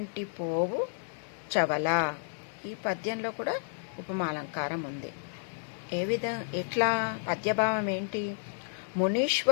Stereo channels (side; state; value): right; silent; 57 dB below the other